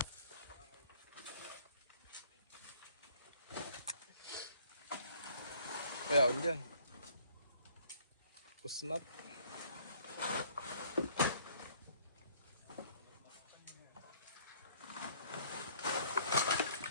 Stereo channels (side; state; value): both; inverted; correlation -0.58